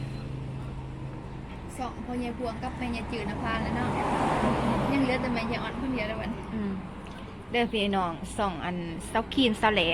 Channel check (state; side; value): identical; both; correlation 1.00